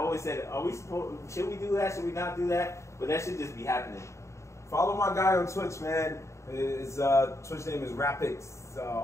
said, should we do that? Should we not do that? But that should just be happening. Follow my guy on Twitch, man. His Twitch name is Rapix,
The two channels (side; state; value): right; late; 0.14 ms